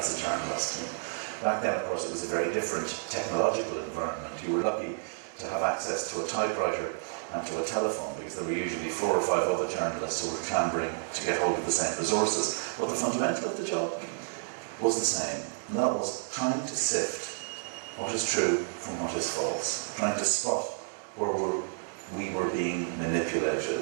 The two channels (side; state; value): left; silent; digital silence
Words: a journalist? And back then, of course, it was a very different technological environment. You were lucky to have access to a typewriter and to a telephone, because there were usually 4 or 5 other journalists who were clambering to get hold of the same resources. But the fundamental of the job was the same, and that was trying to sift what is true from what is false, trying to spot where we were being